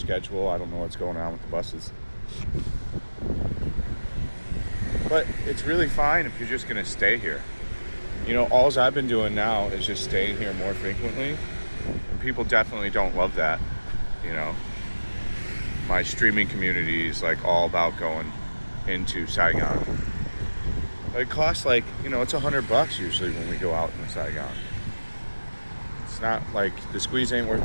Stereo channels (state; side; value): inverted; both; correlation -1.00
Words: I don't know what's going on with the buses. But it's really fine if you're just going to stay here. You know, all I've been doing now is just staying here more frequently. And people definitely don't love that, you know. My streaming community is like all about going into Saigon. It costs like, you know, it's $100 usually when we go out in Saigon. It's not like the squeeze ain't worth